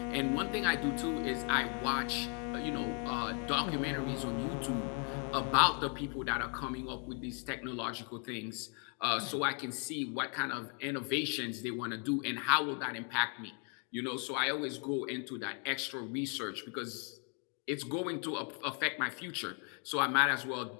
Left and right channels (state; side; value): quieter; right; 39.2 dB